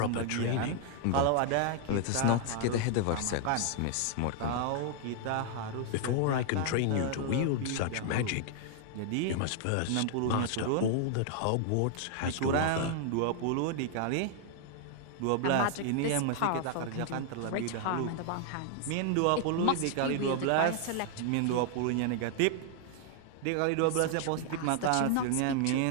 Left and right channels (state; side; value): different; both; correlation 0.00